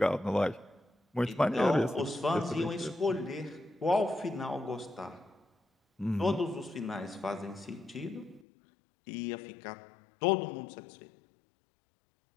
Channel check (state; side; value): drops out; right; at 8.5 s